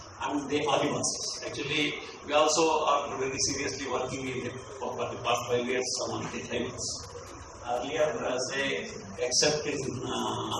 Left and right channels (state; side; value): identical; both; correlation 1.00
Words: and the Adivasis. Actually, we also are very seriously working for the past 5 years on the tribals. Earlier, say, except in